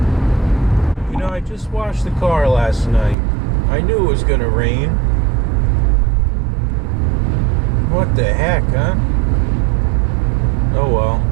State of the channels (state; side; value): drops out; left; at 3.2 s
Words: You know, I just washed the car last night. I knew it was gonna rain. What the heck, huh? Oh well.